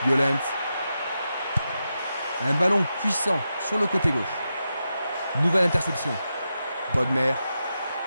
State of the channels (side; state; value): both; inverted; correlation -0.89